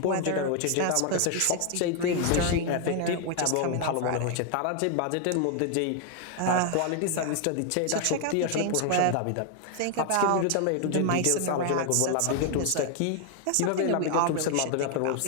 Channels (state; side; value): different; both; correlation 0.00